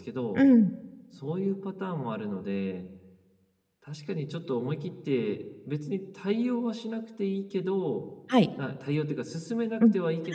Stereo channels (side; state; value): both; identical; correlation 1.00